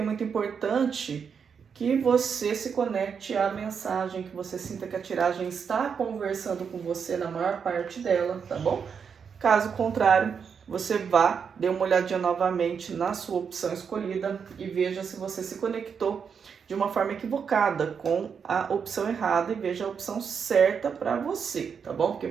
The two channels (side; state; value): left; quieter; 6.6 dB